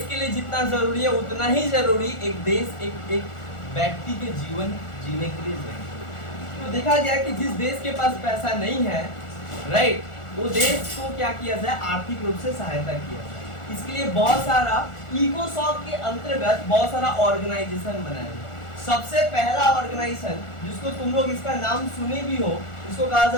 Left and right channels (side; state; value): right; late; 1.4 ms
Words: के लिए जितना जरूरी है उतना ही जरूरी एक देश, एक व्यक्ति के जीवन जीने के लिए जरूरी। तो देखा गया कि जिस देश के पास पैसा नहीं है, राइट, वो देश को क्या किया जाए, आर्थिक रूप से सहायता किया जाए। इसके लिए बहुत सारा इकोसॉफ्ट के अंतर्गत बहुत सारा ऑर्गेनाइजेशन बनाया गया। सबसे पहला ऑर्गेनाइजेशन जिसको तुम लोग इसका नाम सुने भी हो, इसको कहा